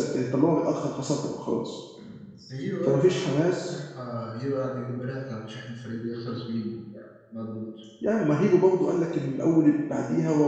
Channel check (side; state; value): both; identical; correlation 1.00